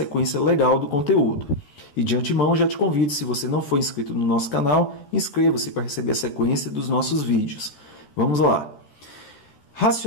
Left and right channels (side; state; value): right; late; 13 ms